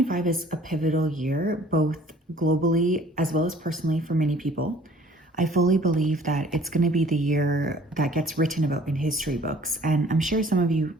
is a pivotal year, both globally as well as personally for many people. I fully believe that it's going to be the year that gets written about in history books, and I'm sure some of you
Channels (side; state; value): both; normal; correlation 0.54